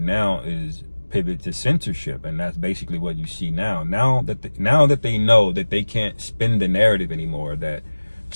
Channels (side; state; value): both; inverted; correlation -1.00